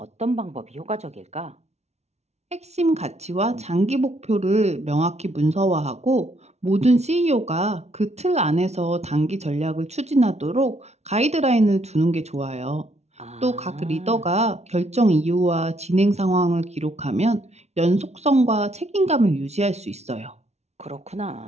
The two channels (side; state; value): left; late; 0.32 ms